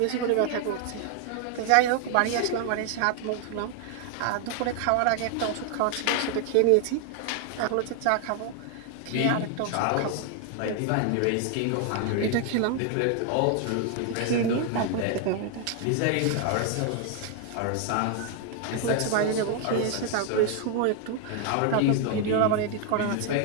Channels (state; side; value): different; both; correlation 0.00